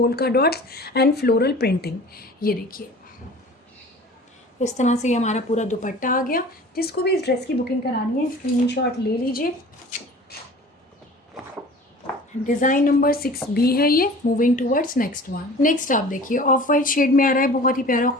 dots and floral printing. ये देखिए इस तरह से ये हमारा पूरा दुपट्टा आ गया। जिसको भी इस ड्रेस की बुकिंग करानी है स्क्रीनशॉट ले लीजिए। डिज़ाइन नंबर 6B है ये। Moving towards next one. Next आप देखिए ऑफ वाइट शेड में आ रहा है, बहुत ही प्यारा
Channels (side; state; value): both; normal; correlation 0.43